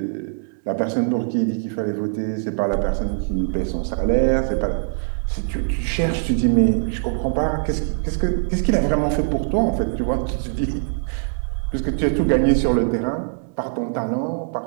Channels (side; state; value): left; silent; digital silence